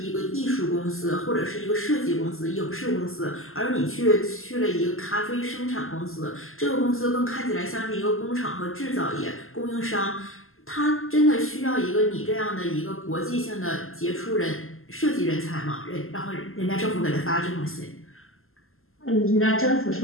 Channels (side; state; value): right; late; 0.62 ms